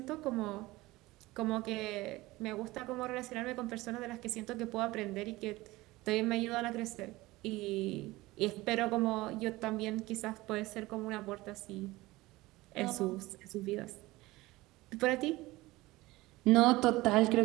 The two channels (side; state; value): left; quieter; 19.6 dB